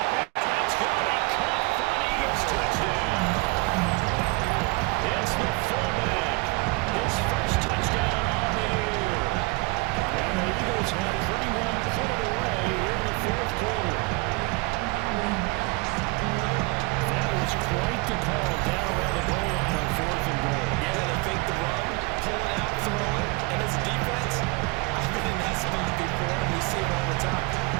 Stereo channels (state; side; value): quieter; left; 27.3 dB